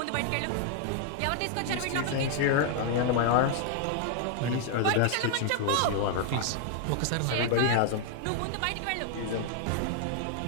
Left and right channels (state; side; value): different; both; correlation 0.00